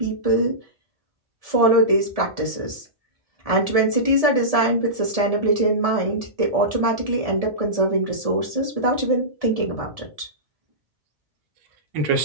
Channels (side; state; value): left; late; 1.7 ms